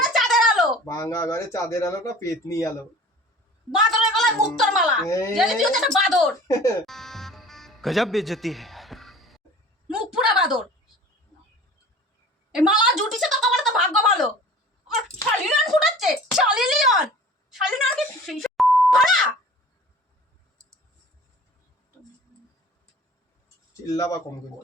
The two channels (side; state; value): both; normal; correlation 0.44